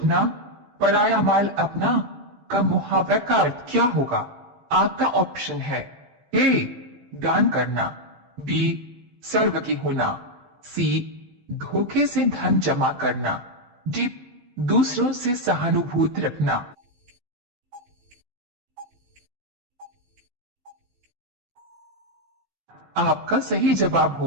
पराया माल अपना का मुहावरा का अर्थ क्या होगा? आपका ऑप्शन है ए दान करना, बी सर्वकी होना, सी धोखे से धन जमा करना, डी दूसरों से सहानुभूति रखना। आपका सही जवाब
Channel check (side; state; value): left; late; 14 ms